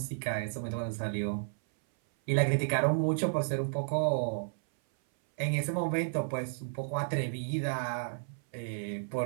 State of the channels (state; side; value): silent; left; 56 dB below the other